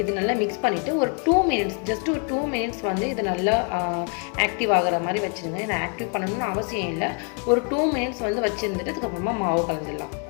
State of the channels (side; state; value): right; quieter; 38.5 dB